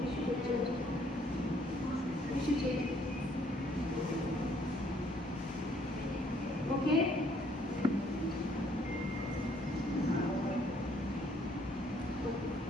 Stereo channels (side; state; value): both; normal; correlation 0.65